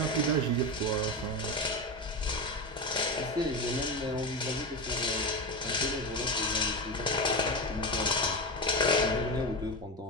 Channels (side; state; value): both; normal; correlation 0.18